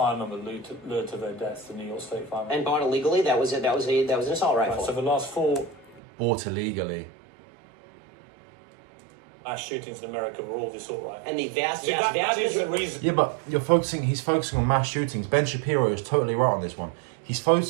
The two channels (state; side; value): drops out; left; at 6.0 s